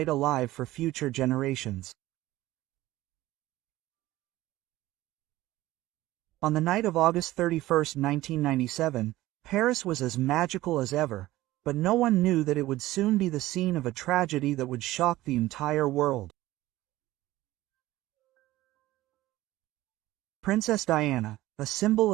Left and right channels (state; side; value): quieter; left; 16.7 dB